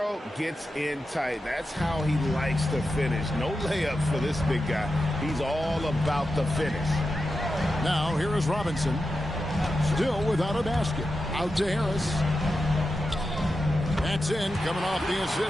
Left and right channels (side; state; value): both; normal; correlation 0.90